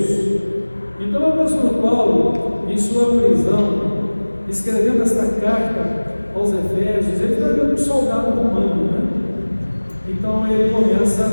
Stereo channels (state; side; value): inverted; both; correlation -1.00